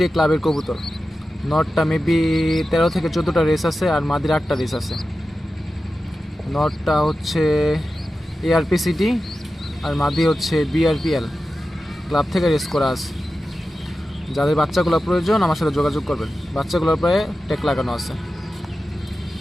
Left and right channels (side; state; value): both; normal; correlation 0.93